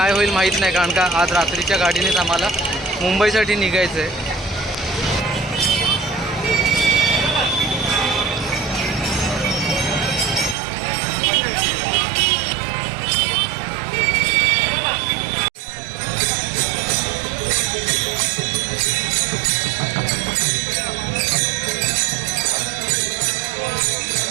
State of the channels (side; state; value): left; drops out; at 10.6 s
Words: होईल माहीत नाही, कारण का आज रात्रीच्या गाडीनेच आम्हाला मुंबईसाठी निघायचं आहे.